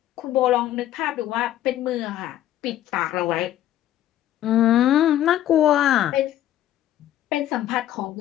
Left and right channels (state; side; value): quieter; right; 12.6 dB